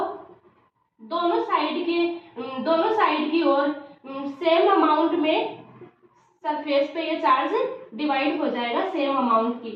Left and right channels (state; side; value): identical; both; correlation 1.00